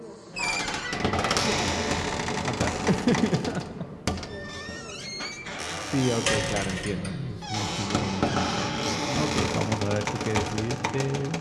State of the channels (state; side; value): identical; both; correlation 1.00